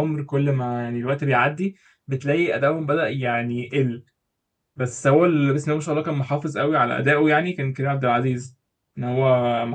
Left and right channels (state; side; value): identical; both; correlation 1.00